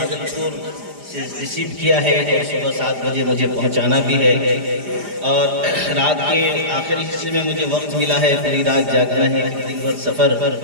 سے ریسیو کیا ہے اور صبح 7 بجے مجھے پہنچانا بھی ہے، اور رات کے آخری حصے میں مجھے وقت ملا ہے، پوری رات جاگنا ہے، دن بھر سفر،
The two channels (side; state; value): left; late; 4.9 ms